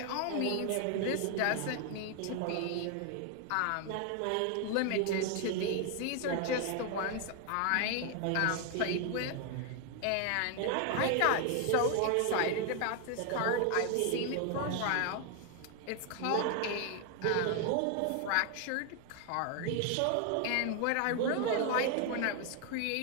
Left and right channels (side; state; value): both; different; correlation 0.01